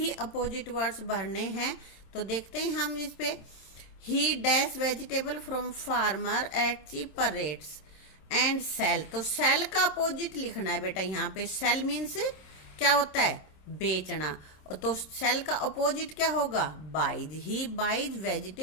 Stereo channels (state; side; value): late; right; 26 ms